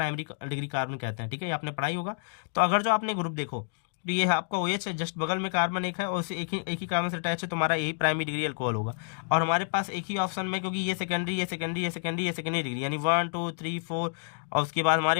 डिग्री कार्बन कहते हैं, ठीक है, ये आपने पढ़ाई होगा। तो अगर जो आपने ग्रुप देखो तो ये आपका OH है, जस्ट बगल में कार्बन एक है और उसे एक ही कार्बन से अटैच है, तो हमारा यही प्राइमरी डिग्री अल्कोहल होगा। और हमारे पास एक ही ऑप्शन में, क्योंकि ये सेकेंडरी, ये सेकेंडरी, ये सेकेंडरी, ये सेकेंडरी डिग्री, यानी 1 2 3 4, और उसके बाद हमारे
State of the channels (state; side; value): silent; right; digital silence